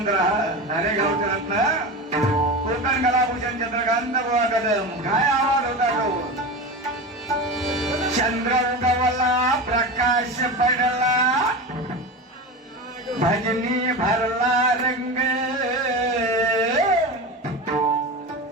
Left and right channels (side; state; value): both; normal; correlation 0.25